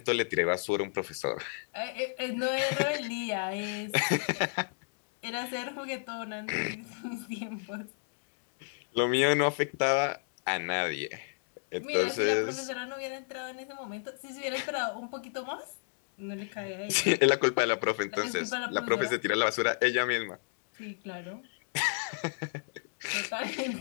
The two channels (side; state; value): right; silent; digital silence